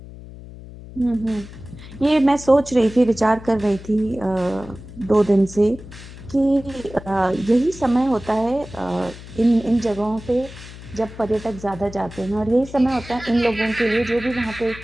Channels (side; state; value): left; noise; hum, 16 dB below the sound